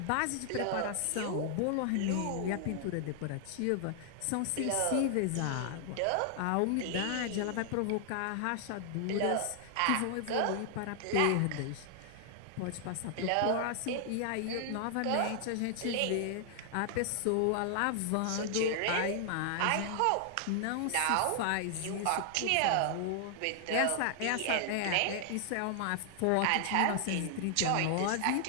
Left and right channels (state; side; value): different; both; correlation 0.00